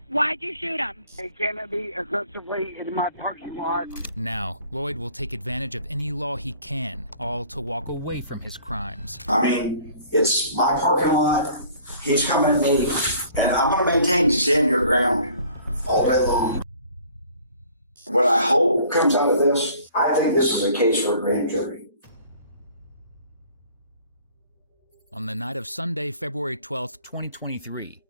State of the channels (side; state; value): both; inverted; correlation -0.54